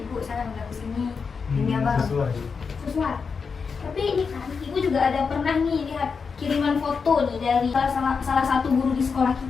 saya nggak kesini demi Abang. Sesuai. Tapi ini kan ibu juga ada pernah nih lihat kiriman foto nih dari salah satu guru di sekolah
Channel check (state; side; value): quieter; right; 5.4 dB